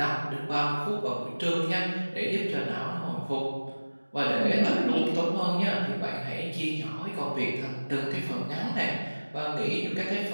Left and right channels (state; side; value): inverted; both; correlation -1.00